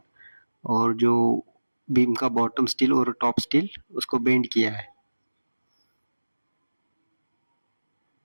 और जो बीम का बॉटम स्टील और टॉप स्टील उसको बेंड किया है।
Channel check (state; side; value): inverted; both; correlation -1.00